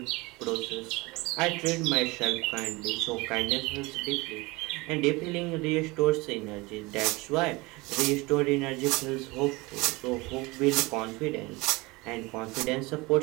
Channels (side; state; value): left; quieter; 23.5 dB